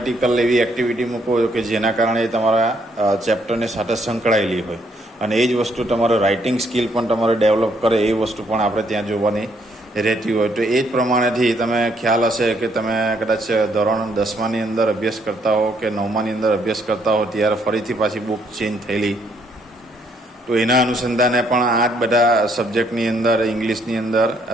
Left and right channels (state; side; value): normal; both; correlation 0.70